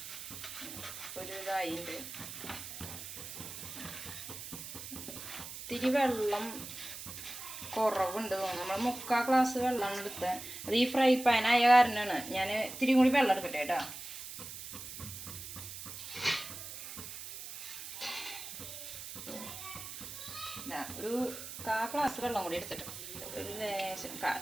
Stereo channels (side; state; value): right; noise; hiss, 10 dB below the sound